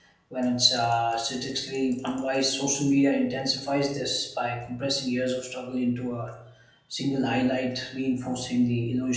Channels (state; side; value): identical; both; correlation 1.00